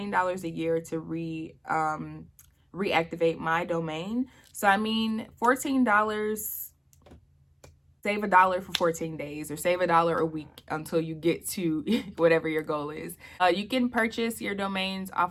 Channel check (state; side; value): identical; both; correlation 1.00